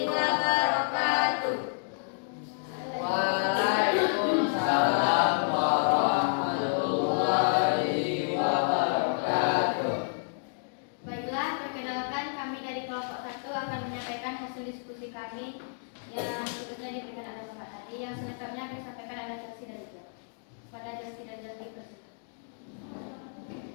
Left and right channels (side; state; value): right; silent; digital silence